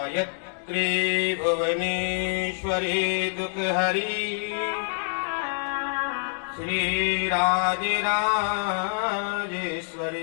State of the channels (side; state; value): right; silent; digital silence